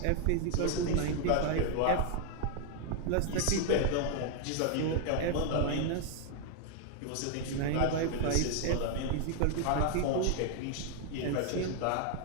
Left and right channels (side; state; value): both; different; correlation 0.00